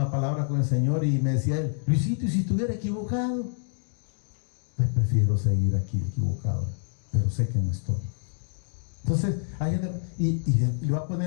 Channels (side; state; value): right; silent; digital silence